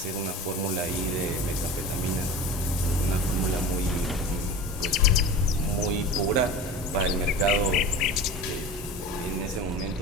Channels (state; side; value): normal; both; correlation 0.33